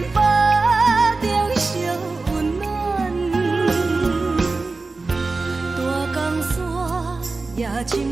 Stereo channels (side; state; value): left; quieter; 3.7 dB